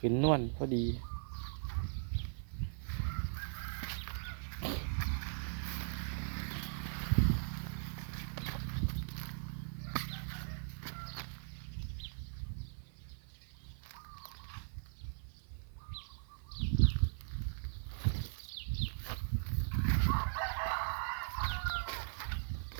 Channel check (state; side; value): silent; left; 51 dB below the other